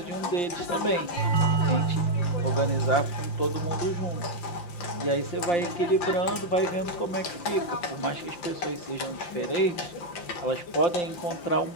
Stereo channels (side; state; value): right; late; 5.8 ms